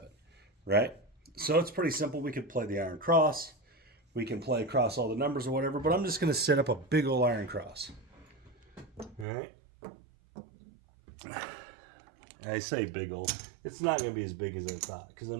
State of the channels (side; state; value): left; drops out; at 9.2 s